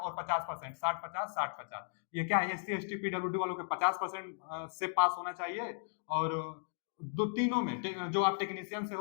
50%, 60-50, 60-50, ये क्या है, एससी एसटी पीडब्ल्यूडी वालों के 50% से पास होना चाहिए। और दो तीनों में जो आप टेक्नीशियन से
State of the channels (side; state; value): right; silent; digital silence